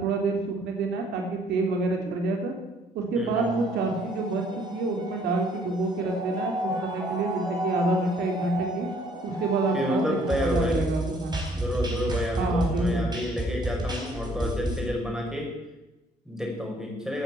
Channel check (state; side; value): normal; both; correlation 0.62